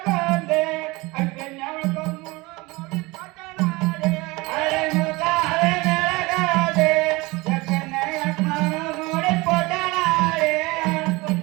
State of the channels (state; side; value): quieter; left; 23.3 dB